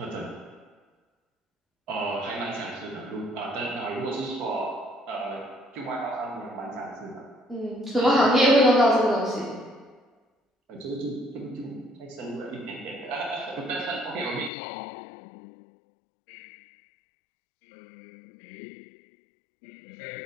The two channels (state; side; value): drops out; right; at 14.5 s